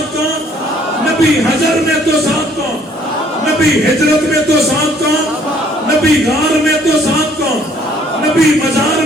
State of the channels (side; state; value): both; normal; correlation 0.61